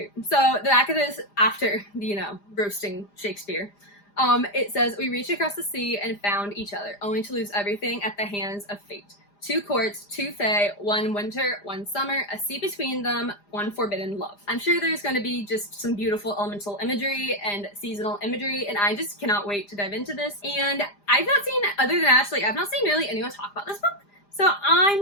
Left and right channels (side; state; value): right; late; 4.9 ms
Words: So the back of this, after, you know, roasting Shakespeare, it says, "We reached across the sea and found each other, only to lose everything at the hands of fate. 2 courts, 2 fae, 1 winter, 1 summer, a sea between them, 1 forbidden love. I'm sure there's going to be just some beautiful elemental imagery and seasonal imagery, and I just cannot wait to dive into this. And I've not seen, other than Ashley, I've not seen really anyone talk about this book, so